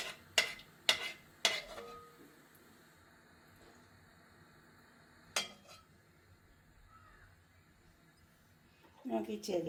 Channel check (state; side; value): identical; both; correlation 1.00